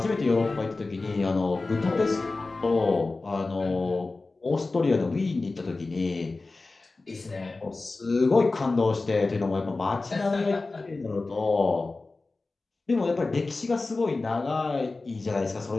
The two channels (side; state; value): right; quieter; 3.5 dB